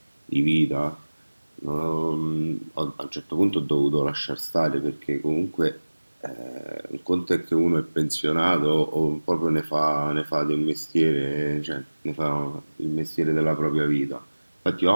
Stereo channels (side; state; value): both; inverted; correlation -1.00